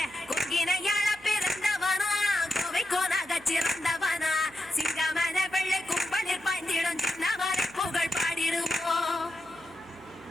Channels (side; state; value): left; noise; hum, 30 dB below the sound